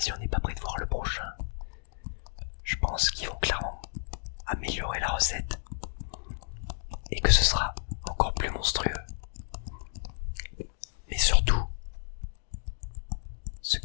on n'est pas prêt de voir le prochain, je pense qu'ils vont clairement améliorer la recette et que ce sera encore plus monstrueux. Mais surtout, ce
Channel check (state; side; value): silent; right; digital silence